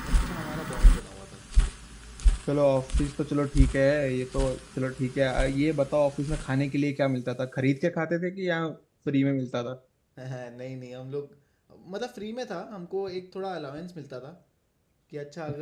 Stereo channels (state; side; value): identical; both; correlation 1.00